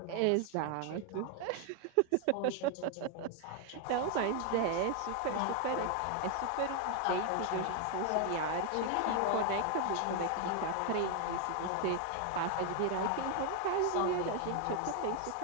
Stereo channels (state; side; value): different; both; correlation 0.01